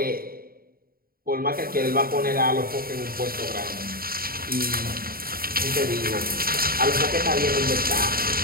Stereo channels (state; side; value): late; left; 0.43 ms